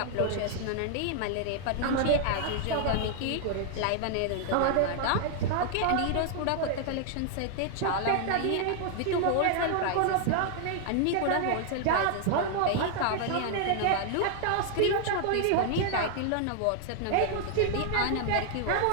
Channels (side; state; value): both; different; correlation 0.00